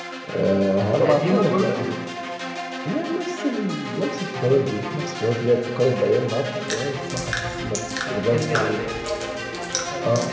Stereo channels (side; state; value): both; identical; correlation 1.00